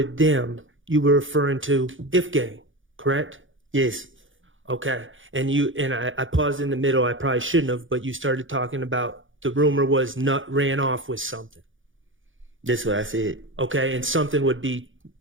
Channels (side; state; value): left; late; 0.57 ms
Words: them, you were referring to If Gang, correct? Yes. Okay. And I paused in the middle. I probably shouldn't have, but you started talking about the rumor was Nut ran off with something. That's what I said. Okay. And something would be